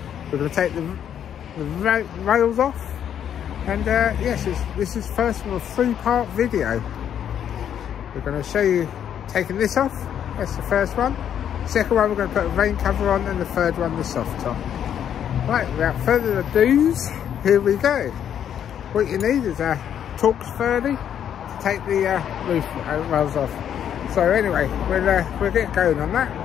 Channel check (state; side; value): quieter; right; 9.4 dB